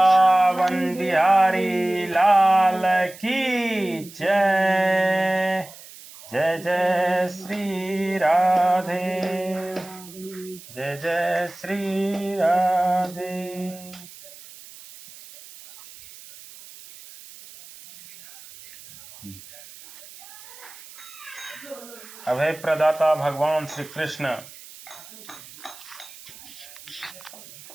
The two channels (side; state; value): right; noise; hiss, 18 dB below the sound